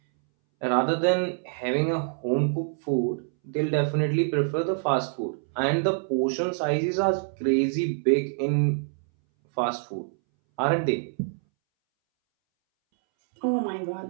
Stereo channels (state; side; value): silent; left; 61 dB below the other